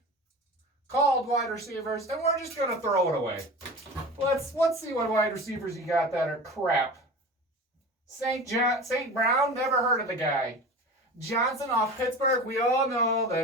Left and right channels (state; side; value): normal; both; correlation 0.34